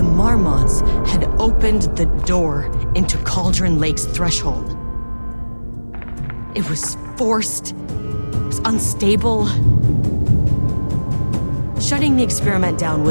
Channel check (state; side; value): inverted; both; correlation -1.00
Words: Marmonts had opened the door into Cauldron Lake's threshold. It was forced, it was unstable. Shutting the experiment down